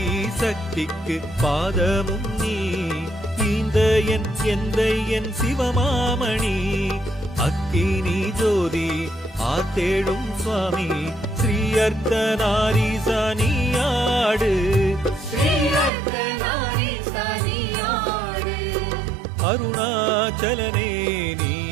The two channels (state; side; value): drops out; left; at 15.9 s